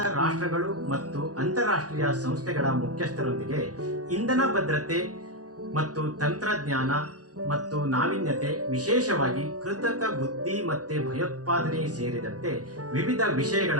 ರಾಷ್ಟ್ರಗಳು ಮತ್ತು ಅಂತಾರಾಷ್ಟ್ರೀಯ ಸಂಸ್ಥೆಗಳ ಮುಖ್ಯಸ್ಥರೊಂದಿಗೆ ಇಂಧನ ಭದ್ರತೆ ಮತ್ತು ತಂತ್ರಜ್ಞಾನ ಮತ್ತು ನಾವೀನ್ಯತೆ, ವಿಶೇಷವಾಗಿ ಕೃತಕ ಬುದ್ಧಿಮತ್ತೆ, ಭಯೋತ್ಪಾದನೆ ಸೇರಿದಂತೆ ವಿವಿಧ ವಿಷಯಗಳ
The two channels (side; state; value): left; late; 0.67 ms